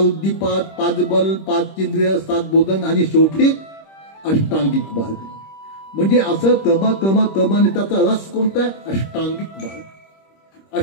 5 बल, 5 इंद्रिय, 7 बोधन आणि शेवटी अष्टांगिक मार्ग. म्हणजे असं क्रमाने त्याचा रस कोणता आहे? अष्टांगिक मार्ग.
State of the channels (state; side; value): late; right; 26 ms